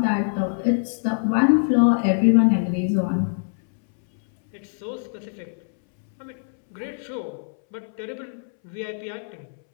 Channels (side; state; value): right; silent; 63 dB below the other